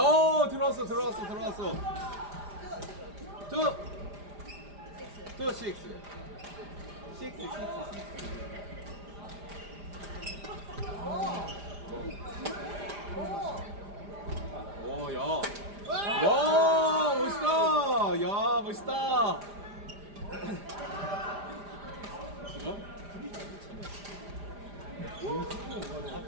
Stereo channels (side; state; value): left; late; 5.0 ms